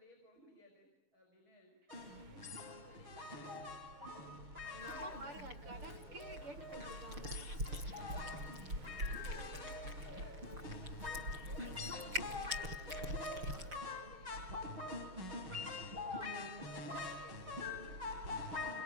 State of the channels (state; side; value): late; left; 6.6 ms